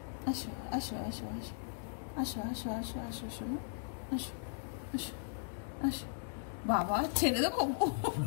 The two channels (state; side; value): silent; right; 53 dB below the other